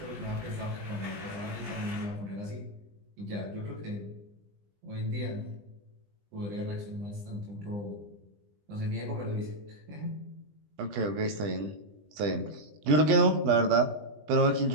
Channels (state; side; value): late; left; 20 ms